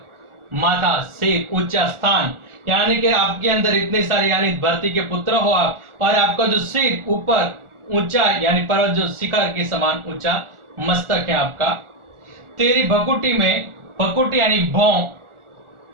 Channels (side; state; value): left; late; 1.4 ms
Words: माथा, सिर, ऊंचा स्थान, यानी कि आपके अंदर इतने सारे यानी धरती के पुत्र हो आप, और आपका जो सिर ऊपर ऊंचा यानी पर्वत जो शिखर के समान ऊंचा मस्तक है आपका। तेरी भकुटी में, भकुटी यानी भौं,